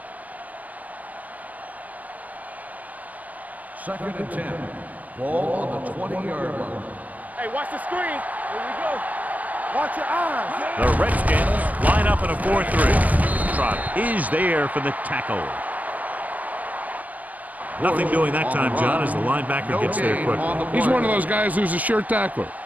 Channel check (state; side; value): late; left; 0.076 ms